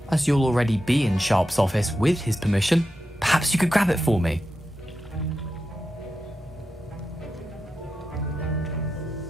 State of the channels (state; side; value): normal; both; correlation 0.89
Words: As you'll already be in Sharp's office with his permission, perhaps you could grab it for me.